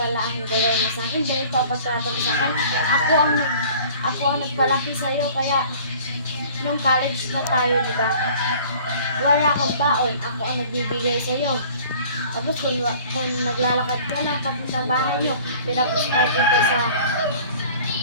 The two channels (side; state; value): both; inverted; correlation -0.48